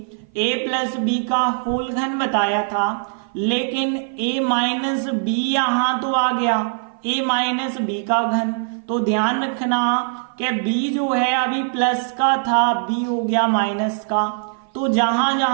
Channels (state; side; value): silent; left; 55 dB below the other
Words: a प्लस बी का होल घन बताया था, लेकिन a माइनस बी यहाँ तो आ गया, a माइनस बी का घन। तो ध्यान रखना कि b जो है अभी प्लस का था, b हो गया माइनस का, तो जहां